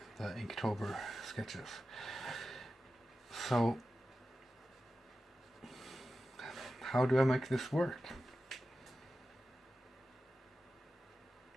the Inktober sketches. So how do I make this work?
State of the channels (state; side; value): normal; both; correlation 0.93